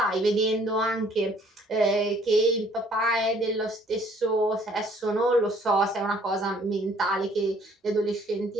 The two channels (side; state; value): both; normal; correlation 0.59